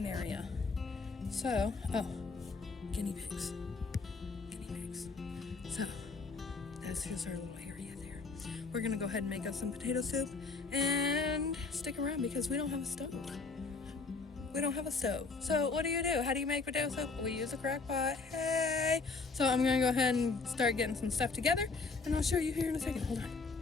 area. So, guinea pigs. So, that's just our little area there. We're gonna go ahead and make us some potato soup and stick around because we don't have a stove. So what do? How do you make potato soup? We use a crock pot. Hey! So I'm gonna go ahead and start getting some stuff together, and I'll show you here in a second. Hold on.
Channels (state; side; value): quieter; right; 4.2 dB